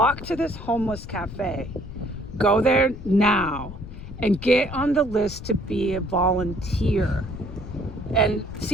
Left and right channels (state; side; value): noise; left; rumble, 11 dB below the sound